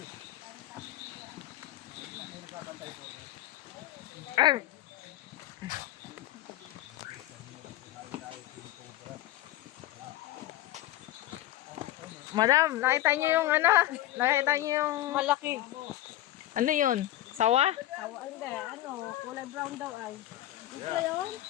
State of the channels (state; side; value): quieter; right; 14.7 dB